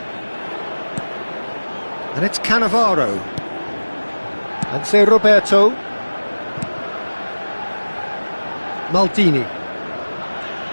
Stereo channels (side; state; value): both; inverted; correlation -1.00